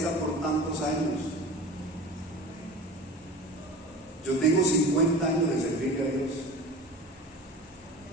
por tantos años. Yo tengo 50 años de servirle a Dios.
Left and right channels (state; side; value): normal; both; correlation 0.35